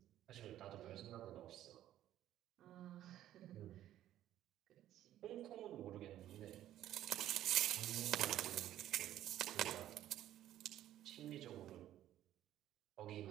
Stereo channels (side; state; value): left; quieter; 12.6 dB